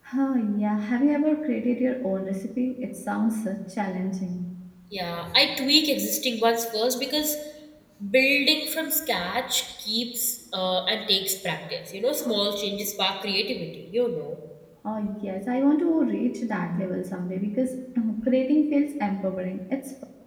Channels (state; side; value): identical; both; correlation 1.00